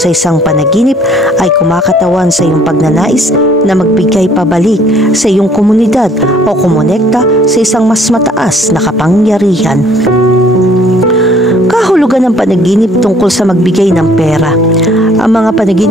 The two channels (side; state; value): both; normal; correlation 0.59